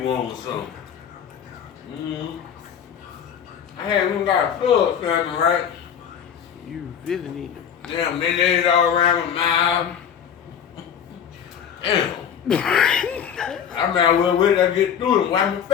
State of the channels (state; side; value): quieter; right; 8.4 dB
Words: wanting something. I haven't got a plug something, right? You really need it. Damn, they laid it all around my mouth. Damn. I might as well wait till I get through and wipe my